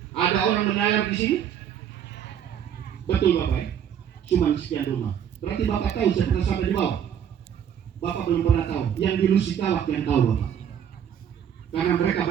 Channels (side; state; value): left; quieter; 9.0 dB